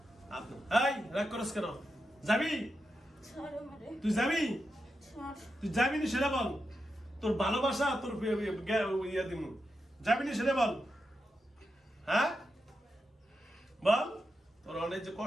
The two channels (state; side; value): normal; both; correlation 0.87